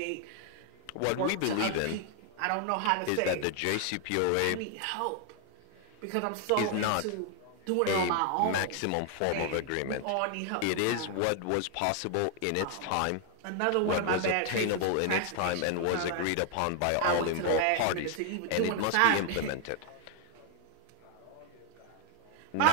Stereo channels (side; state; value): both; different; correlation 0.00